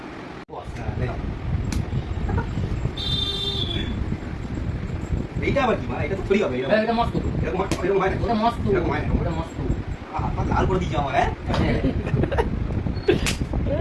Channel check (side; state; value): both; identical; correlation 1.00